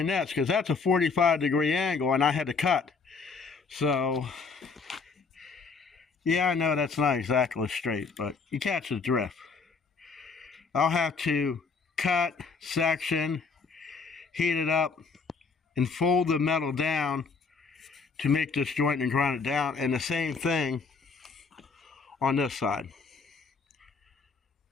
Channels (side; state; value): right; quieter; 4.8 dB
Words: that, because that's a 45-degree angle and I had to cut. So, yeah, I know that's not exactly straight, but you catch the drift. I'll have to cut, section, heat it up, and fold the metal down to make this joint and grind it down. And the same thing on this side.